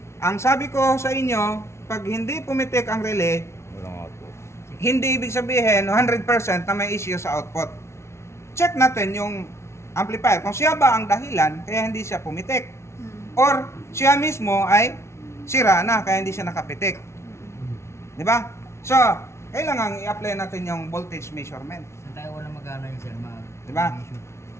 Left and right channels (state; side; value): late; right; 0.13 ms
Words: ang sabi ko sa inyo, pag hindi pumitik ang relay, Walang output. hindi ibig sabihin 100% na may issue sa output. Check natin yung amplifier. Kung siya ba ang dahilan, kaya hindi siya pumitik. Or siya mismo ay sira na, kaya hindi siya nakapitik. Di ba? So, kailangan i-apply natin yung voltage measurement. Saan tayo walang magana yun sir? Di ba?